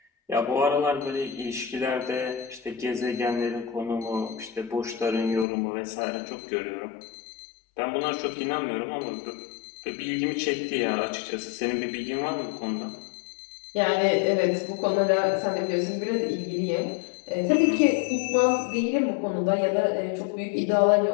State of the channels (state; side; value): drops out; right; at 5.5 s